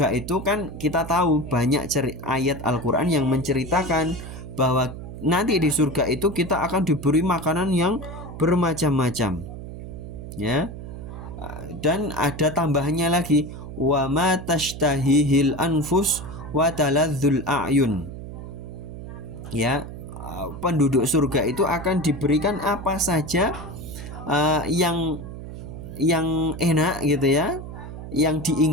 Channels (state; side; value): noise; right; hum, 10 dB below the sound